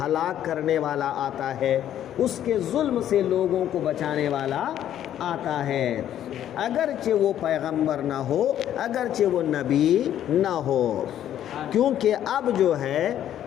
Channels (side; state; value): right; quieter; 11.0 dB